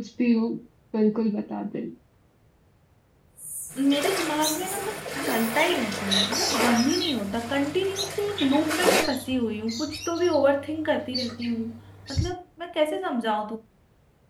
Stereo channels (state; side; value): identical; both; correlation 1.00